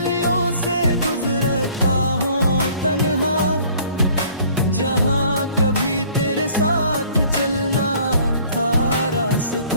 से गुजरता हूँ तन्हा, जहाँ कभी तेरे साथ चलना था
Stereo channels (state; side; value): inverted; both; correlation -0.55